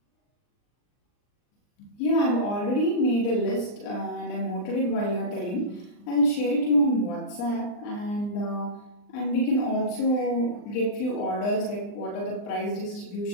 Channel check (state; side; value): late; right; 39 ms